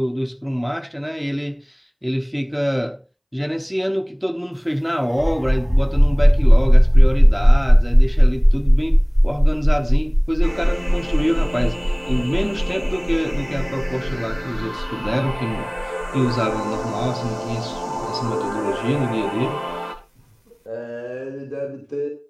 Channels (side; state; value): both; identical; correlation 1.00